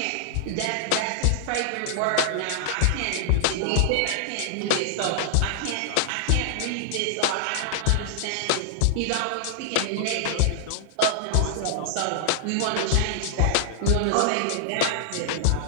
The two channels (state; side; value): different; both; correlation -0.01